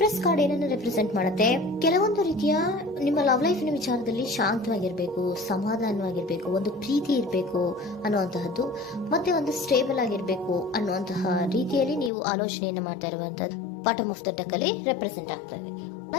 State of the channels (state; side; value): drops out; right; at 12.1 s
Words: ಕಾರ್ಡ್ ಏನನ್ನು ರೆಪ್ರೆಸೆಂಟ್ ಮಾಡುತ್ತೆ? ಕೆಲವೊಂದು ರೀತಿಯ ನಿಮ್ಮ ಲವ್ ಲೈಫಿನ ವಿಚಾರದಲ್ಲಿ ಶಾಂತವಾಗಿರ್ಬೇಕು, ಸಮಾಧಾನವಾಗಿರ್ಬೇಕು, ಒಂದು ಪ್ರೀತಿ ಇರಬೇಕು ಅನ್ನುವಂತಹದ್ದು, ಮತ್ತೆ ಒಂದು ಸ್ಟೇಬಲ್ ಆಗಿರ್ಬೇಕು ಅನ್ನುವಂತಹ ರೀತಿಯಲ್ಲಿ ನೀವು ಆಲೋಚನೆಯನ್ನು ಮಾಡ್ತಾ ಇರುವಂತಹದ್ದು ಬಾಟಮ್ ಆಫ್ ದ ಡೆಕ್ ಅಲ್ಲಿ ರೆಪ್ರೆಸೆಂಟ್ ಆಗ್ತದೆ.